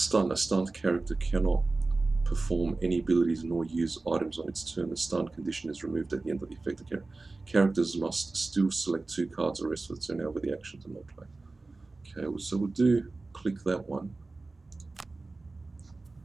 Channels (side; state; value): left; quieter; 3.5 dB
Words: A stunned character cannot perform any abilities nor use items on its turn. The stun condition is removed at the end of the affected character. Characters must still select 2 cards or rest for the turn. However, the action to not play. Okay, so we'll do click that one.